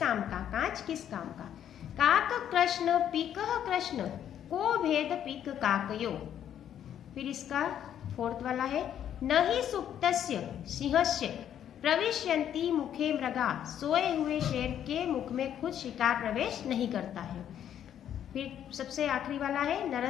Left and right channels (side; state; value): right; quieter; 10.0 dB